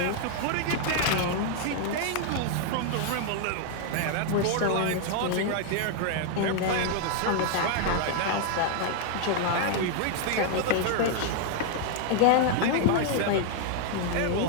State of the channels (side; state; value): both; different; correlation 0.00